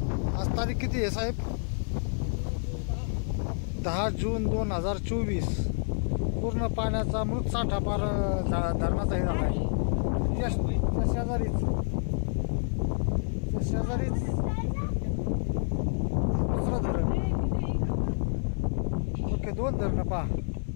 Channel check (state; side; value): silent; right; 59 dB below the other